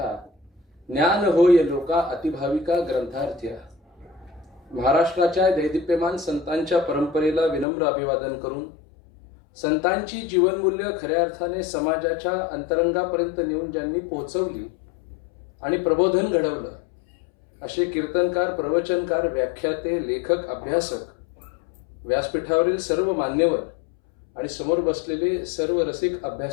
ज्ञान होय लोका अतिभाविका ग्रंथार्थ्या. महाराष्ट्राच्या दैदिप्यमान संतांच्या परंपरेला विनम्र अभिवादन करून संतांची जीवनमूल्य खऱ्या अर्थाने समाजाच्या अंतरंगापर्यंत नेऊन ज्यांनी पोहोचवली आणि प्रबोधन घडवलं असे कीर्तनकार, प्रवचनकार, व्याख्याते, लेखक, अभ्यासक, व्यासपीठावरील सर्व मान्यवर आणि समोर बसलेले सर्व रसिक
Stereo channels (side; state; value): right; drops out; at 7.7 s